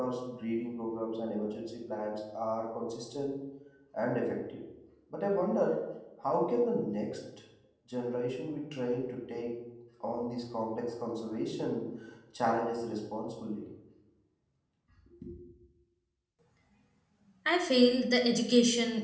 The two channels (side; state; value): both; identical; correlation 1.00